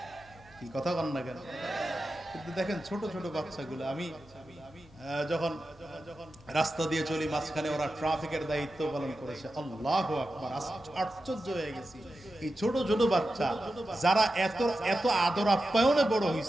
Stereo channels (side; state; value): right; noise; hum, 27 dB below the sound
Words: কি কথা কন না কেন? কিন্তু দেখেন ছোট ছোট বাচ্চাগুলো, আমি যখন রাস্তা দিয়ে চলি মাঝখানে ওরা ট্রাফিকের দায়িত্ব পালন করেছে, আল্লাহু আকবার, আশ্চর্য হয়ে গেছি। এই ছোট ছোট বাচ্চা যারা এত এত আদর আপ্যায়নে বড়